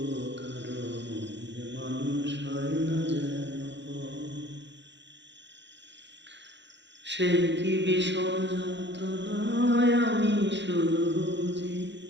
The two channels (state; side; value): late; left; 0.52 ms